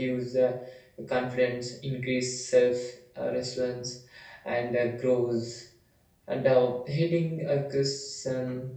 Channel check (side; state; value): both; identical; correlation 1.00